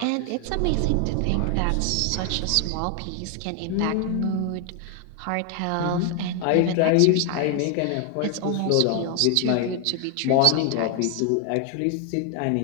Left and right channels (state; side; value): different; both; correlation 0.01